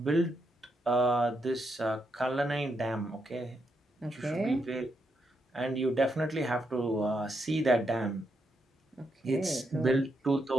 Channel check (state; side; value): normal; both; correlation 0.80